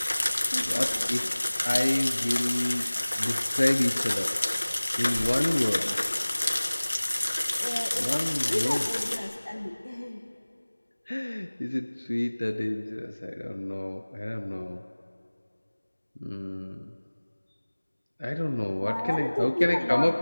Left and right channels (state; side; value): inverted; both; correlation -1.00